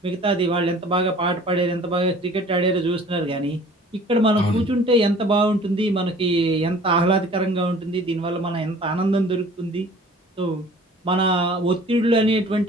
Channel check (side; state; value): both; normal; correlation 0.49